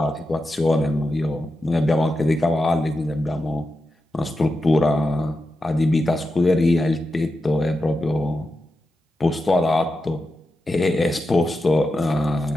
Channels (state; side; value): normal; both; correlation 0.89